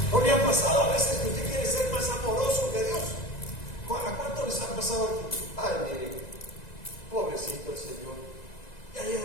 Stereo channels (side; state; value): right; late; 1.9 ms